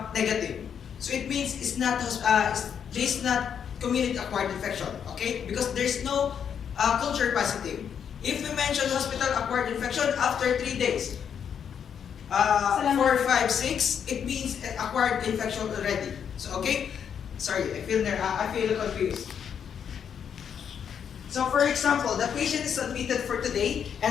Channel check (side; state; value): right; quieter; 7.9 dB